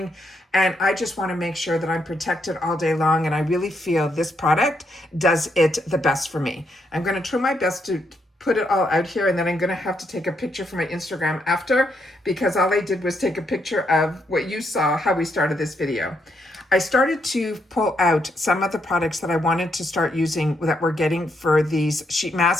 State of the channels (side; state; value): both; normal; correlation 0.77